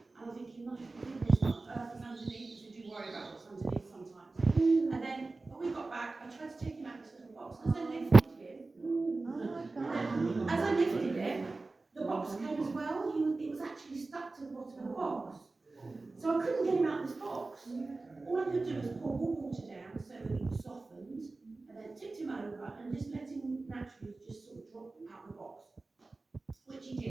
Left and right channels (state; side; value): quieter; left; 3.5 dB